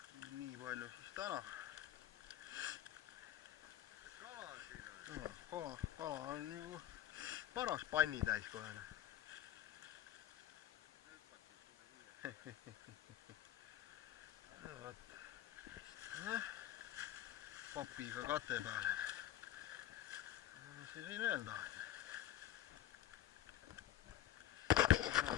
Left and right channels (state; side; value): quieter; right; 12.5 dB